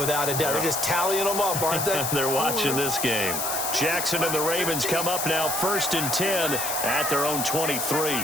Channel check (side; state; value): left; noise; hiss, 2 dB below the sound